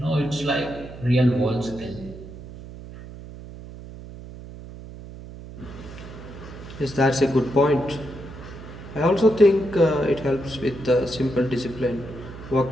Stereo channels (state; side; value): noise; right; hum, 14 dB below the sound